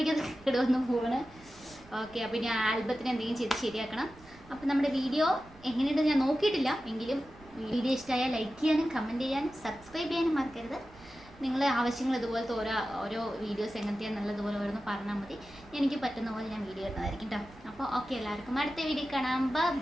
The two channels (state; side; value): noise; right; rumble, 23 dB below the sound